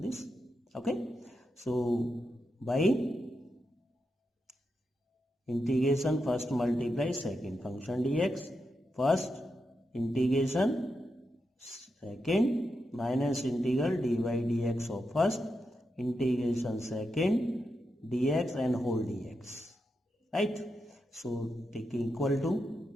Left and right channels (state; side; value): normal; both; correlation 0.86